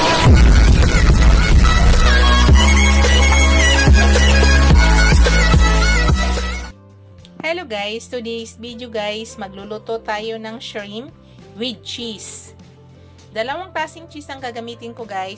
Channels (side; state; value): both; identical; correlation 1.00